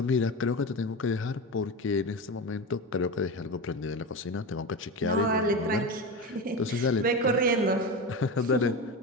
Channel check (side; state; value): both; normal; correlation 0.22